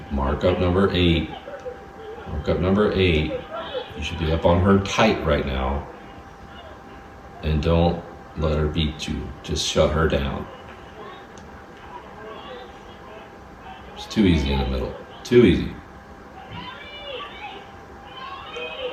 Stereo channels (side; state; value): both; identical; correlation 1.00